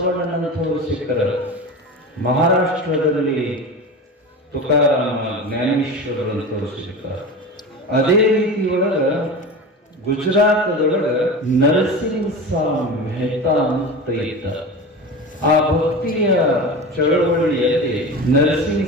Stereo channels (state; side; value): normal; both; correlation 0.29